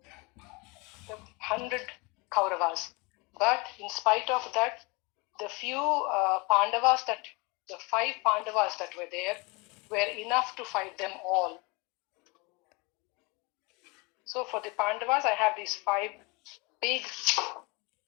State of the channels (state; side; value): quieter; right; 27.9 dB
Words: 100 Kauravas. But in spite of that, the few Pandavas the 5 Pandavas that were there were enough to fight them all. So for the Pandavas, I have these 5 big